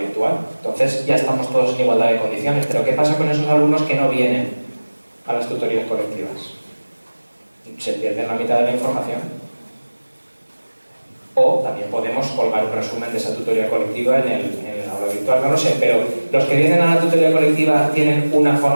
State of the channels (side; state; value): both; inverted; correlation -1.00